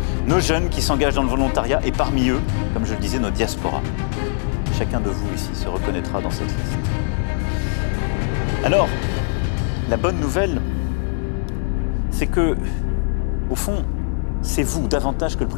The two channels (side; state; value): right; silent; digital silence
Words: nos jeunes qui s'engagent dans le volontariat et parmi eux, comme je le disais, nos diasporas. Chacun de vous ici se reconnaîtra dans cette liste. Alors, la bonne nouvelle, c'est que, au fond, c'est vous, davantage que le